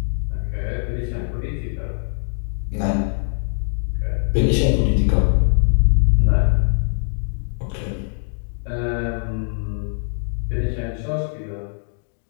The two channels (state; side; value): silent; right; digital silence